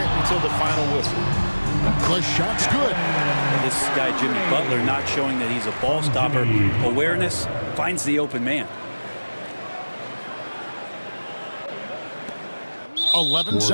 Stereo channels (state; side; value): inverted; both; correlation -1.00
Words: until the final whistle. The shot's good. This guy, Jimmy Butler, not showing that he's a ball stopper. Awareness finds the open man. 11